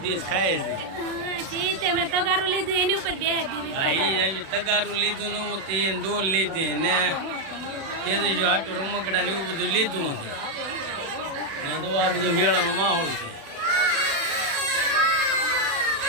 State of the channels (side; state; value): left; late; 36 ms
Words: દેશ ખાય છે. તગારું લીધું એની ઉપર તગારું લીધું નવું તે દોર લીધી ને તેજસ્વી હાટું રમકડા ને એવું બધું લીધું છે ને. તો આ બધું મેળાનો માહોલ છે.